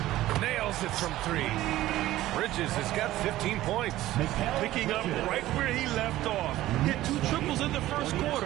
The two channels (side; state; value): left; quieter; 15.4 dB